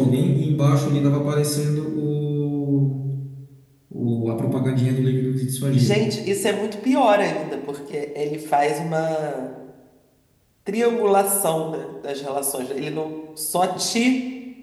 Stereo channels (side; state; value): both; identical; correlation 1.00